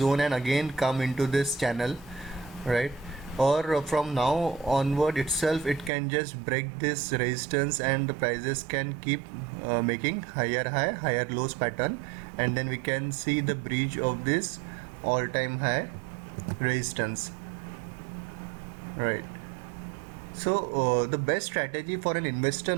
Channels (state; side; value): drops out; left; at 5.9 s